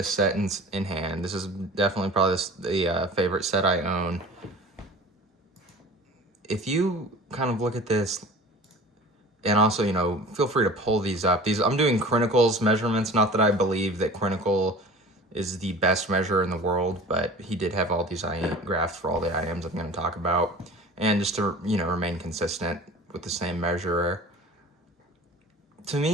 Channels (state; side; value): normal; both; correlation 0.41